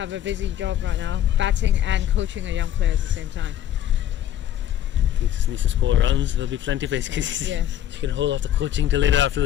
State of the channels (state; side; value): quieter; right; 11.5 dB